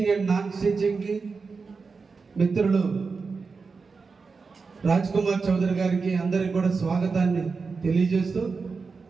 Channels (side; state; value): left; quieter; 4.7 dB